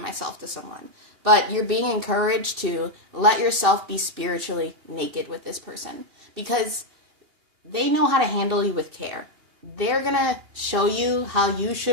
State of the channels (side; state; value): left; late; 2.6 ms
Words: myself to someone. But you're being encouraged to let yourself be spiritually naked with this person because they know how to handle you with care. They're going to show you how you